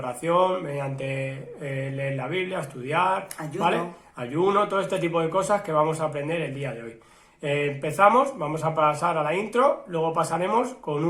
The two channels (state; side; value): identical; both; correlation 1.00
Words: mediante leer la Biblia, estudiar, ayuno. ¿vale? Ayuno, todo este tipo de cosas que vamos a aprender el día de hoy. Empezamos, vamos a pasar a la intro, luego pasaremos con